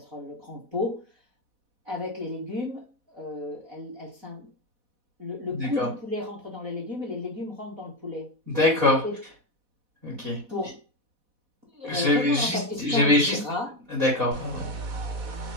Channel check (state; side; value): late; left; 4.1 ms